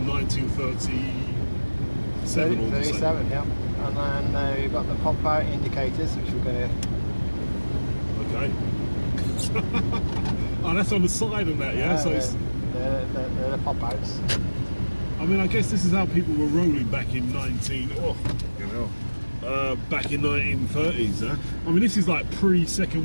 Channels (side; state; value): both; inverted; correlation -1.00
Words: 1937. 37. Yep. And then we've got the pop-out indicators, which we're going to. Okay. Oh, that's on the side of that, yeah. So they're the pop-outs. I mean, I guess this is how people were rolling back in back in 1930s, huh? I mean, this is like